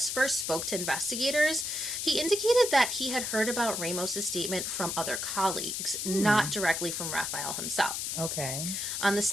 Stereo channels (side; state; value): left; noise; hiss, 2 dB below the sound